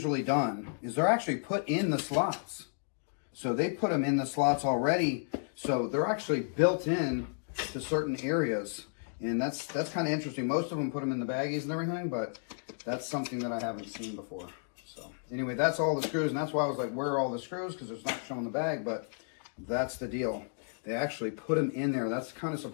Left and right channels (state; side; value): silent; right; digital silence